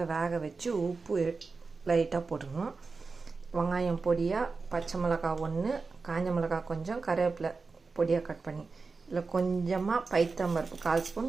வேக வச்சு உப்பு லைட்டாக போட்டுக்கணும். வெங்காயம் பொடியாக, பச்சை மிளகாய் 1, காஞ்ச மிளகாய் கொஞ்சம், கருவேப்பிலை பொடியாக கட் பண்ணி, இல்லை கொஞ்சமாக பைத்தம்பருப்பு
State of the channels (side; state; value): left; quieter; 4.3 dB